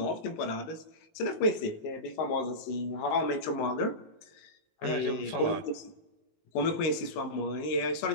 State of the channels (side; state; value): right; late; 19 ms